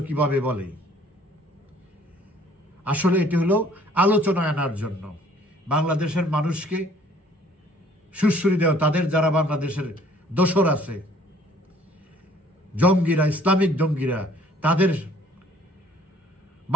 কিভাবে বলে? আসলে এটি হলো আলোচনা আনার জন্য, বাংলাদেশের মানুষকে সুশ্রী দেওয়া। তাদের যারা বাংলাদেশের দোসর আছে, জঙ্গিরা, ইসলামিক জঙ্গিরা, তাদের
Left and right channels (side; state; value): both; normal; correlation 0.57